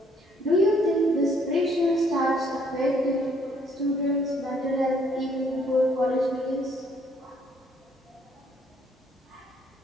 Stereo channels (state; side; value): normal; both; correlation 0.65